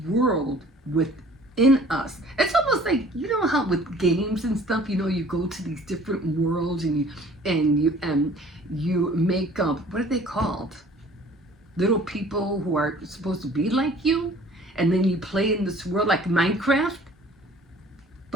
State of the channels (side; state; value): both; normal; correlation 0.51